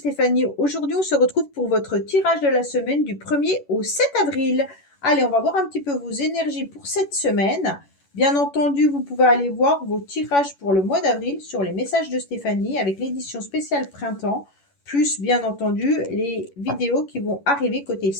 Aujourd'hui, on se retrouve pour votre tirage de la semaine du 1er au 7 avril. Allez, on va voir un petit peu vos énergies pour cette semaine. Bien entendu, vous pouvez aller voir vos tirages pour le mois d'avril sur les messages de Stéphanie avec l'édition spéciale printemps, plus bien entendu les vidéos qui vont arriver côté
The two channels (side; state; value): right; late; 11 ms